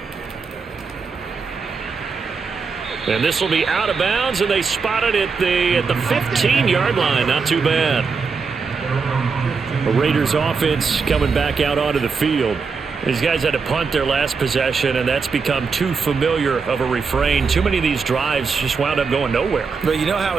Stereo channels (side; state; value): left; quieter; 5.1 dB